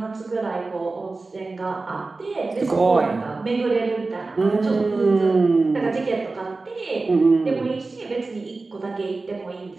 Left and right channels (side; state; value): left; quieter; 3.6 dB